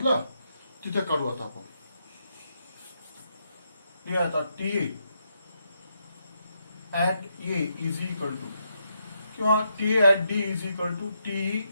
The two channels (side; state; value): both; inverted; correlation -0.80